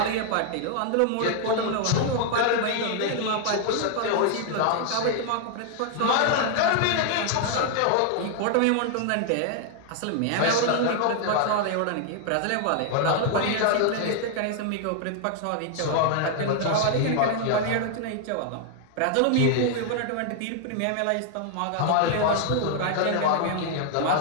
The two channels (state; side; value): different; both; correlation 0.00